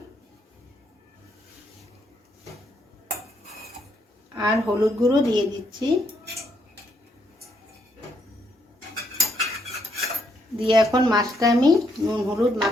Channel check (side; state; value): both; normal; correlation 0.75